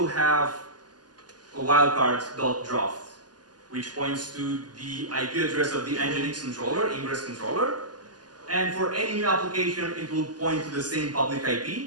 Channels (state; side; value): late; left; 0.70 ms